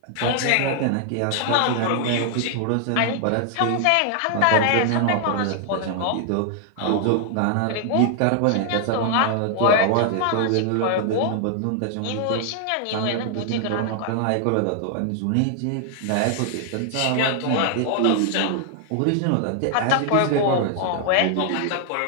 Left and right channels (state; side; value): different; both; correlation 0.00